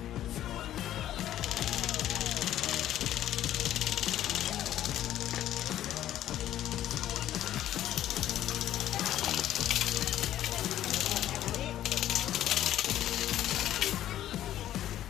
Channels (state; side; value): quieter; right; 12.4 dB